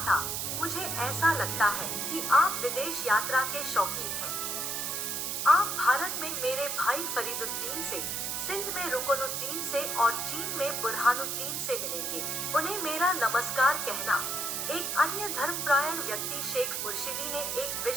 था, मुझे ऐसा लगता है कि आप विदेश यात्रा के शौकीन हैं। आप भारत में मेरे भाई फरीदुद्दीन से, सिंध में रुकनुद्दीन से और चीन में बुरहानुद्दीन से मिलेंगे। उन्हें मेरा नमस्कार कहना। एक अन्य धर्मप्रायण व्यक्ति शेख मुर्शिदी ने एक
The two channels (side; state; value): right; noise; hiss, 2 dB below the sound